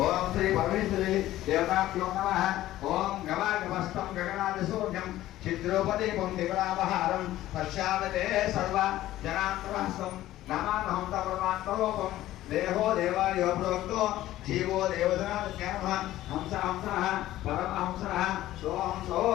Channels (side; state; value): right; quieter; 14.7 dB